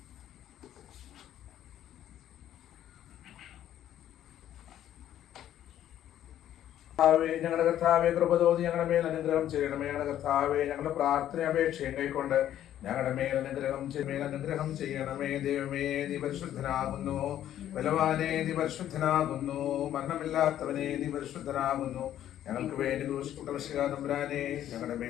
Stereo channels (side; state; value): right; quieter; 11.6 dB